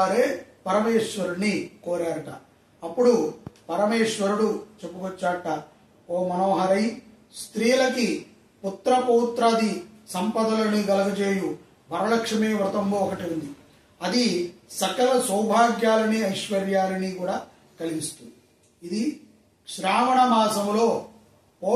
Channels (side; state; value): both; identical; correlation 1.00